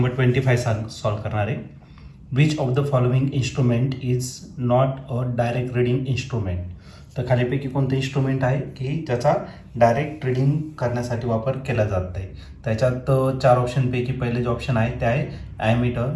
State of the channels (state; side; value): identical; both; correlation 1.00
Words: 25 सॉल्व करणार आहे. Which of the following instrument is not a direct reading instrument. तर खालीपैकी कोणतं इन्स्ट्रुमेंट आहे की ज्याचा डायरेक्ट रीडिंग करण्यासाठी वापर केला जात नाही. त्याच्यात 4 ऑप्शनपैकी पहिले जे ऑप्शन आहे ते आहे ॲमीटर,